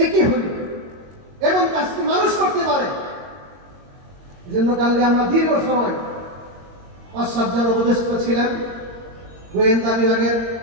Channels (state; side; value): late; left; 22 ms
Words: একই হইল এমন কাজটি মানুষ করতে পারে। এজন্য কালকে আমরা দীর্ঘ সময় ৫-৭ জন উপদেষ্টা ছিলেন, গোয়েন্দা বিভাগের,